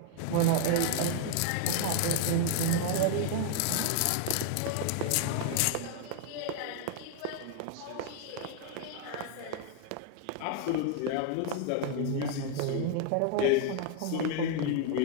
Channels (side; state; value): both; different; correlation 0.00